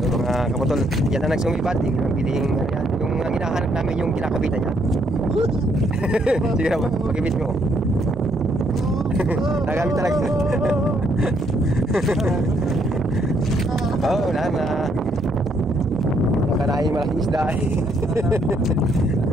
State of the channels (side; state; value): both; normal; correlation 0.71